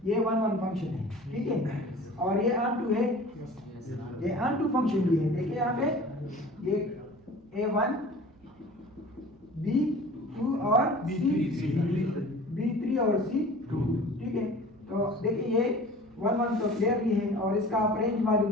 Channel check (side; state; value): right; noise; hum, 29 dB below the sound